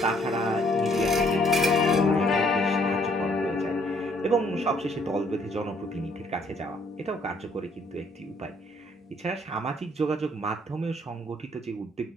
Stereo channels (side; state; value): both; normal; correlation 0.64